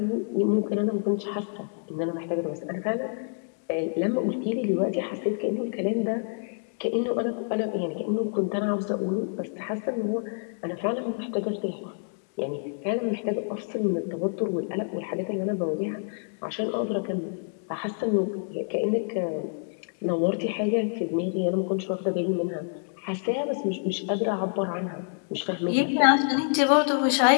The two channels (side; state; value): right; silent; digital silence